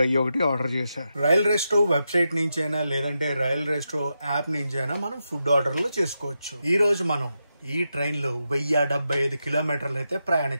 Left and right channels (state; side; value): inverted; both; correlation -0.87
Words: ఒకటి ఆర్డర్ చేశా. రైల్ రెస్టో వెబ్సైట్ నుంచి అయినా, లేదంటే రైల్ రెస్టో యాప్ నుంచి అయినా మనం ఫుడ్ ఆర్డర్లు చేసుకోవచ్చు. ఈ రోజు మనం ఈ ట్రైన్ లో 1075 కిలోమీటర్లు అయితే